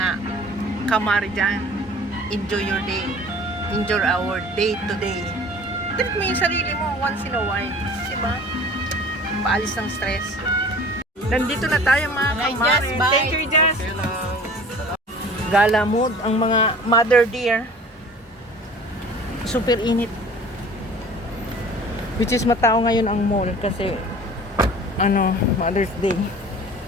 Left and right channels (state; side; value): normal; both; correlation 0.45